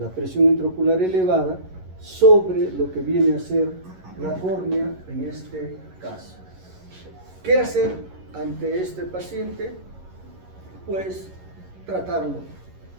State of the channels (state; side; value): late; left; 11 ms